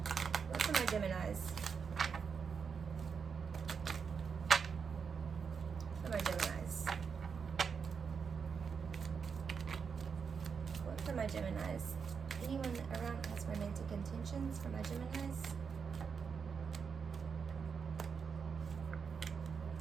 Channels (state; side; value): quieter; left; 6.1 dB